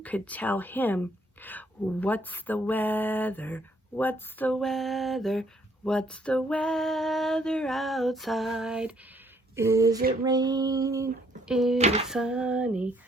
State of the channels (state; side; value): normal; both; correlation 0.66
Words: could tell him, what's the weather, what's the weather, what's the weather outside? Is it rain, is it sunny,